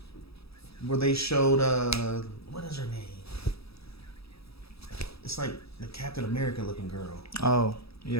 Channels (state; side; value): late; right; 0.77 ms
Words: where they showed what is her name? It's like the Captain America looking girl. Oh,